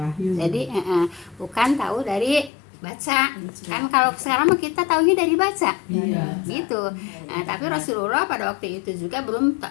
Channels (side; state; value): right; drops out; at 2.5 s